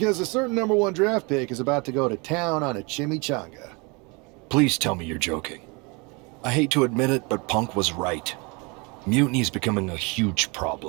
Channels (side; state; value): left; quieter; 29.1 dB